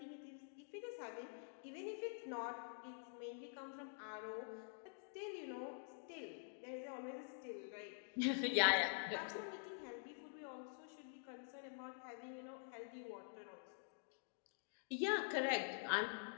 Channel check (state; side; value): silent; right; digital silence